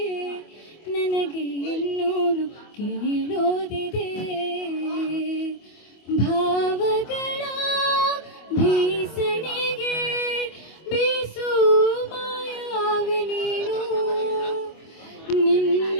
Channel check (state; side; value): late; right; 25 ms